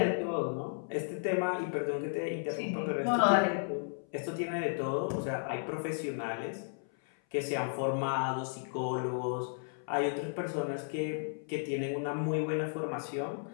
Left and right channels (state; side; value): silent; right; 55 dB below the other